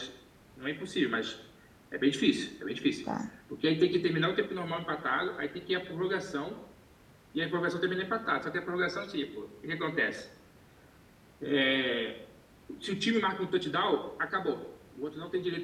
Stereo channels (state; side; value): identical; both; correlation 1.00